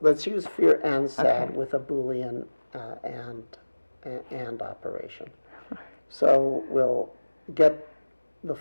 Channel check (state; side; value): inverted; both; correlation -1.00